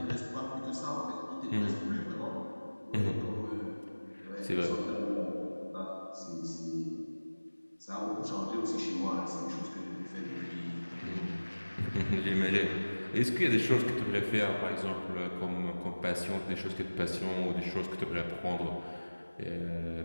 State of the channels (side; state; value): both; inverted; correlation -1.00